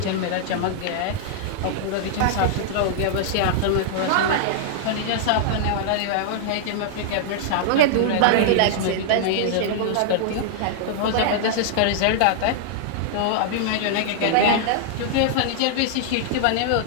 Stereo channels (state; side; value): different; both; correlation -0.01